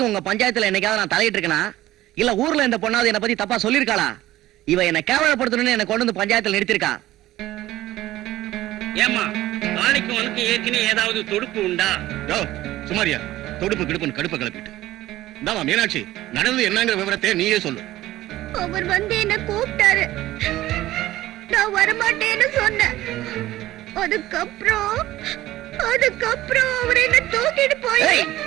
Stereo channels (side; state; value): left; quieter; 15.6 dB